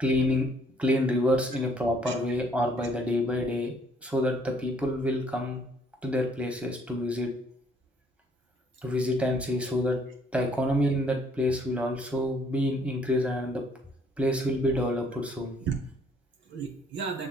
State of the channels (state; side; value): normal; both; correlation 0.63